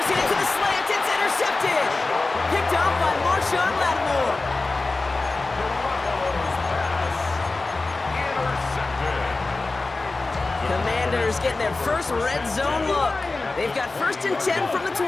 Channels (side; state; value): right; quieter; 3.4 dB